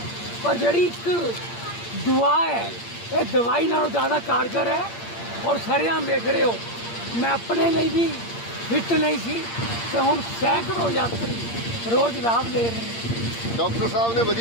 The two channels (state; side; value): late; right; 8.7 ms